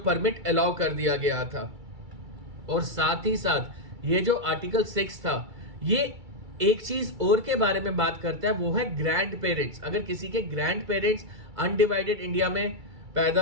अलाउ कर दिया गया था। और साथ ही साथ ये जो आर्टिकल 6 था, ये एक चीज और के बारे में बात करता है, वो है ग्रैंड पेरेंट्स। अगर किसी के ग्रैंड पेरेंट्स अनडिवाइडेड इंडिया में पैदा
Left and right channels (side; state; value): left; late; 2.3 ms